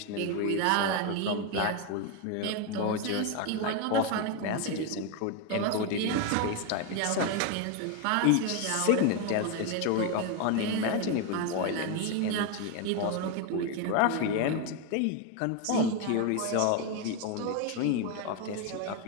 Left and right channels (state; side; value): different; both; correlation 0.02